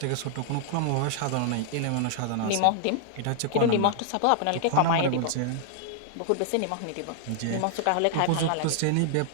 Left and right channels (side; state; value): both; different; correlation 0.00